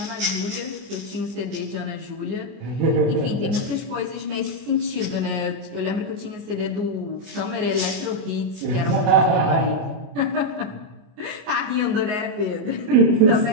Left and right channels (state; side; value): late; left; 24 ms